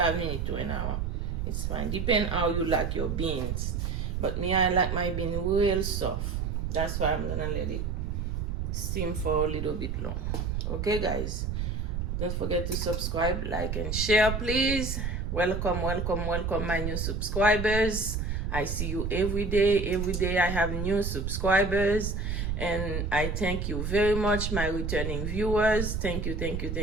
minutes to an hour, it's fine. Depend how you like your beans. But me, I like my bean real soft. That's why I'm gonna let it steam for a little bit long. Okay, guys. Don't forget to subscribe, like, and share, please. Welcome, welcome, welcome, my new subscribers. I see you every day. Every day I have new subscribers. And I thank you very much, my returning viewers. Thank you, thank you,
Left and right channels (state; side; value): noise; right; rumble, 2 dB below the sound